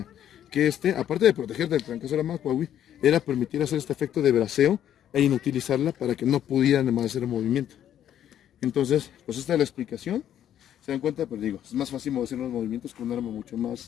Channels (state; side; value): quieter; right; 10.6 dB